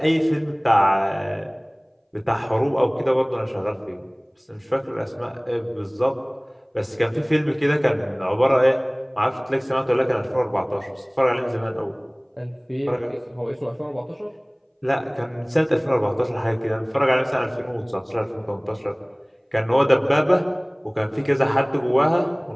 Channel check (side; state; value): both; identical; correlation 1.00